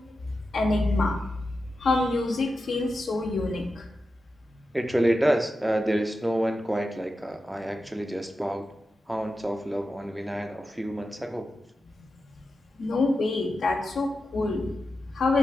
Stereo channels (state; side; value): normal; both; correlation 0.90